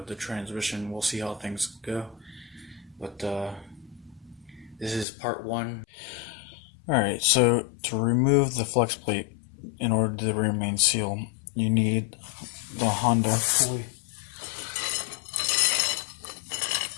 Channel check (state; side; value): drops out; right; at 5.1 s